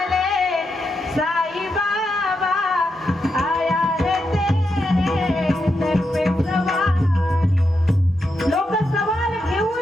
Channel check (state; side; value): normal; both; correlation 0.84